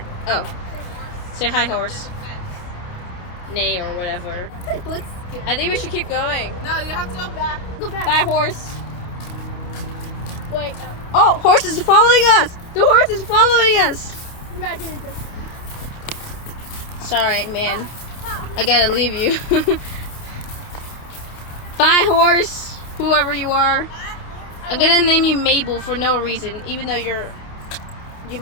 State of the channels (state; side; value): late; right; 28 ms